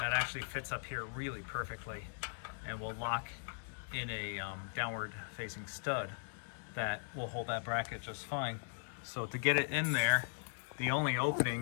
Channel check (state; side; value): silent; right; digital silence